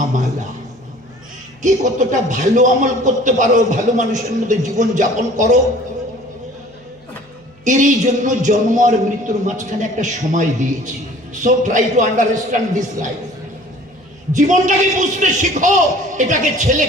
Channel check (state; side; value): noise; right; hum, 30 dB below the sound